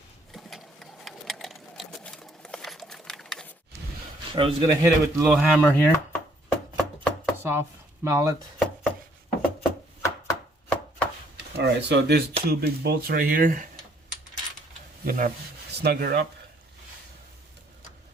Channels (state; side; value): normal; both; correlation 0.65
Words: I was gonna hit it with a little hammer here. Soft mallet. Alright, so there's two big bolts right here. Gonna snug her up.